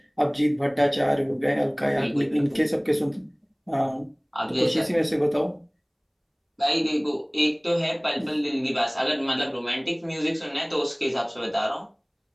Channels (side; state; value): both; identical; correlation 1.00